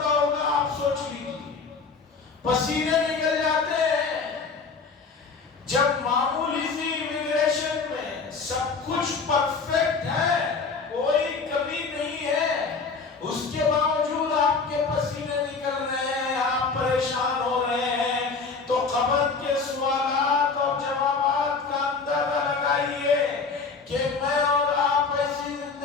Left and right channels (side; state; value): right; quieter; 4.7 dB